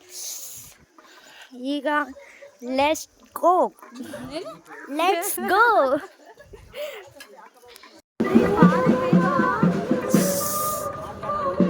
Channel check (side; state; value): both; identical; correlation 1.00